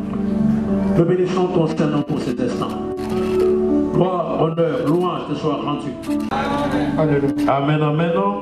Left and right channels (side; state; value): both; identical; correlation 1.00